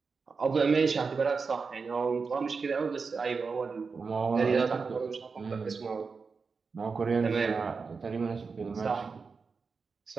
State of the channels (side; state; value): left; quieter; 4.9 dB